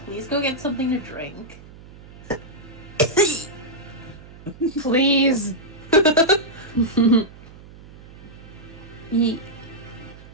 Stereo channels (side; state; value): right; noise; hum, 19 dB below the sound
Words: please go get something to drink. Please. Ye-